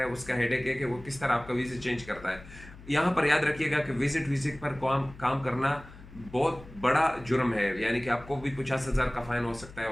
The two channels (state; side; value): noise; left; hum, 18 dB below the sound